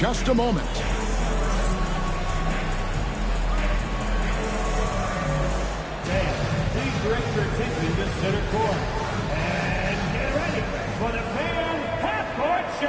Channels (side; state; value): both; identical; correlation 1.00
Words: a moment. Please direct your attention to center court. And get ready for the fan half-court